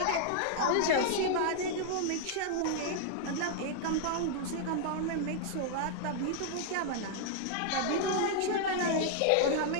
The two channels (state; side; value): different; both; correlation -0.01